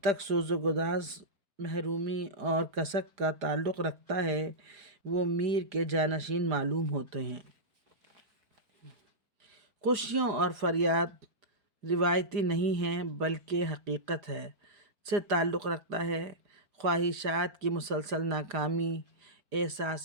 تک سوز و گداز، محرومی اور کسک کا تعلق رکھتا ہے، وہ میر کے جانشین معلوم ہوتے ہیں۔ خوشیوں اور فریاد روایتی نہیں ہیں بلکہ حقیقت ہے، سے تعلق رکھتا ہے۔ خواہشات کی مسلسل ناکامی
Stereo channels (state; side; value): late; left; 4.9 ms